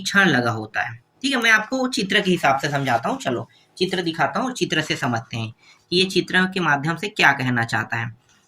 छड़ लगा होता है। ठीक है, मैं आपको चित्र के हिसाब से समझाता हूँ। चलो चित्र दिखाता हूँ और चित्र से समझते हैं कि ये चित्र के माध्यम से क्या कहना चाहता है।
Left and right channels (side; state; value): both; identical; correlation 1.00